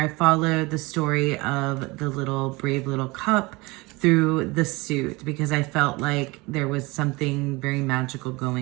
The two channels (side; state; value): left; quieter; 23.9 dB